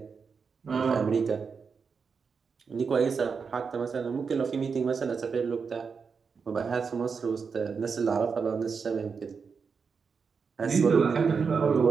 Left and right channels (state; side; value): quieter; left; 5.6 dB